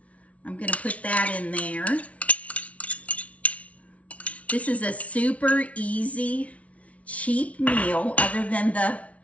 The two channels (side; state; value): right; late; 0.065 ms